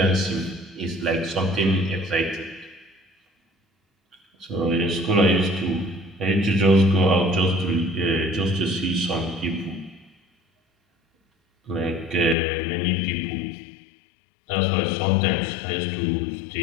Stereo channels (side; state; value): right; drops out; at 12.4 s